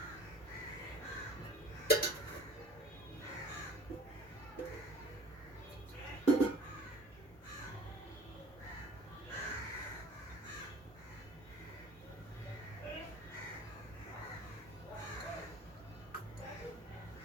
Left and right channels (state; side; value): normal; both; correlation 0.46